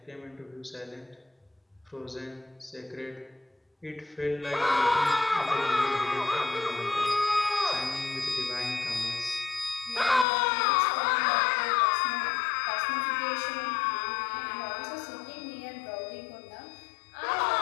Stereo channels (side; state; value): right; drops out; at 10.2 s